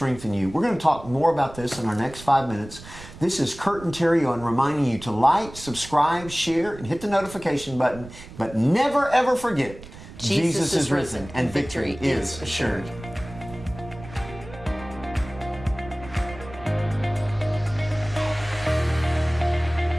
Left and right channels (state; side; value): noise; right; rumble, 16 dB below the sound